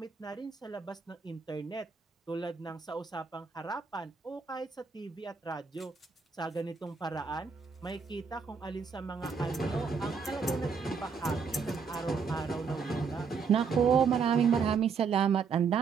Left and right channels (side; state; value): left; quieter; 5.6 dB